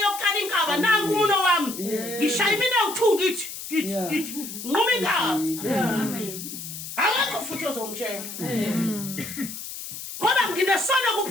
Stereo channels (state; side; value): noise; left; hiss, 9 dB below the sound